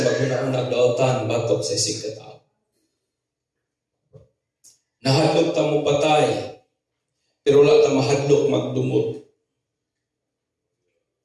maghuna-unag dautan batok sa isig katao. Nahadlok tang mo patay, pero wala tang mahadlok magdumot.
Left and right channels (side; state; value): both; identical; correlation 1.00